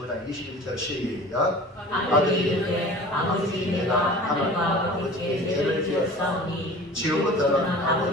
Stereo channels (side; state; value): both; normal; correlation 0.41